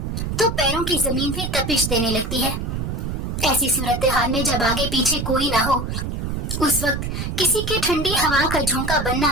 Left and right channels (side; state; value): right; noise; rumble, 3 dB below the sound